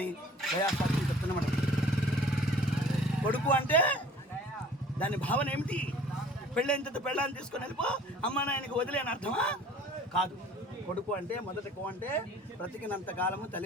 గయా శాస్త్రం చెప్తున్నమాట. కొడుకు అంటే దాని భావన ఏమిటి? పెళ్ళైన పెళ్ళాన్ని తీసుకొని వెళ్ళిపో అమ్మా నాయనకి వదిలేని అర్థమా? కాదు. కొడుకు అంటే మొదటి కో అంటే బ్రతికినంత కాలము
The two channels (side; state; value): both; normal; correlation 0.49